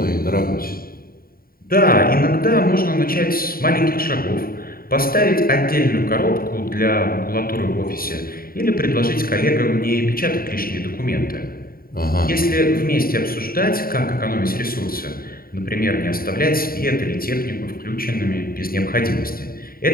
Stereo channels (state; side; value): late; right; 0.43 ms